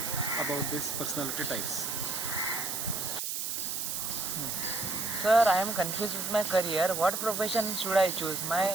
about these personality types. Sir, I am confused with my career. What profession should I choose?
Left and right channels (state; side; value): noise; right; hiss, 2 dB below the sound